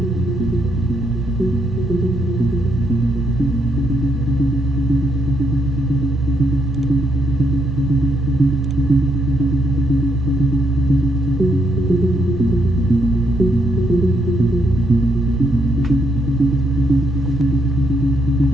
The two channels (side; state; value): both; normal; correlation 0.76